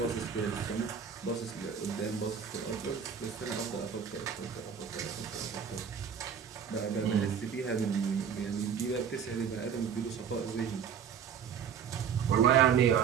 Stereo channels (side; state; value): left; quieter; 7.5 dB